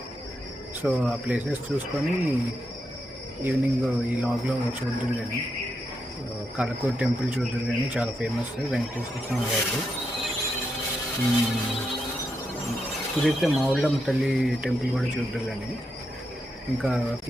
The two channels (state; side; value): normal; both; correlation 0.83